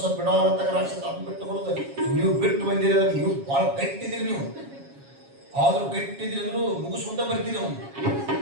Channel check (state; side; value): late; left; 7.3 ms